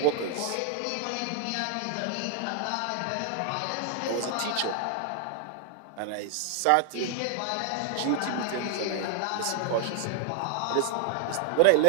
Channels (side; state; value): both; different; correlation 0.00